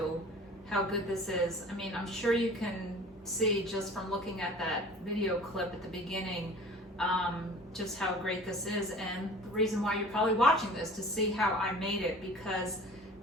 how good this is. I mean, I'm sure you can see just from looking at that video clip at the beginning, just how great this is. And the reason why you're probably watching this to see how I made it, because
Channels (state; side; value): normal; both; correlation 0.44